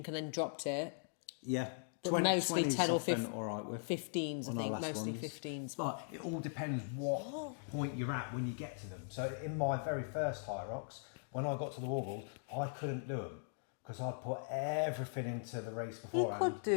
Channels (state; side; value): silent; right; digital silence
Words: and then dropped it. Yeah. But mostly 10 or 15, all right with 15s, I think, mostly 15s. But it all depends what point you're at when you get to them. So in my very first Hyrox, when I got to the wall balls, I couldn't do them. Because I'd put everything into the race beforehand. You could